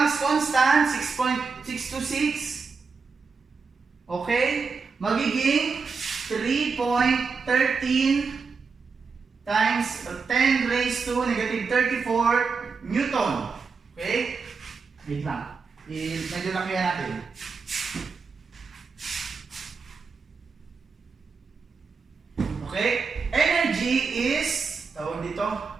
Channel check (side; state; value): left; quieter; 5.0 dB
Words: constant, 6.626. Okay, magiging 3.13 times 10 raised to negative 34 Newton. Okay, wait lang. Medyo lakihan natin. Okay? Energy is, tawag dito,